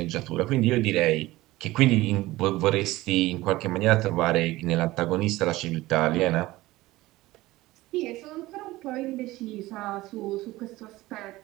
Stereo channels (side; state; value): left; quieter; 18.3 dB